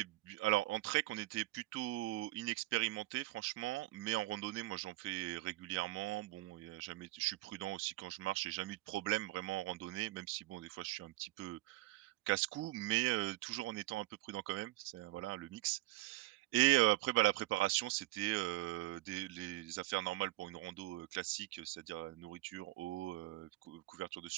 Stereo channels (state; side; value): quieter; left; 18.4 dB